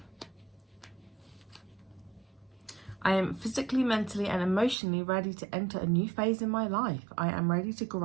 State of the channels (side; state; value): left; drops out; at 4.8 s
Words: I am physically, mentally, and emotionally ready to enter a new phase in my life. I am ready to